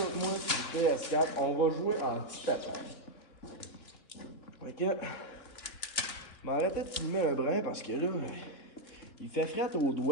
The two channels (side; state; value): right; late; 3.3 ms